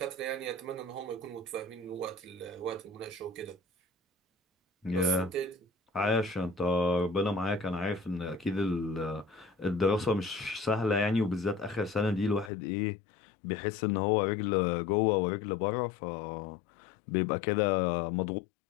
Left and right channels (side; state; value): right; drops out; at 12.5 s